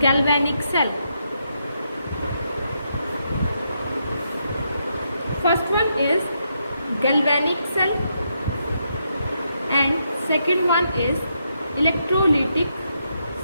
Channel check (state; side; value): inverted; both; correlation -0.80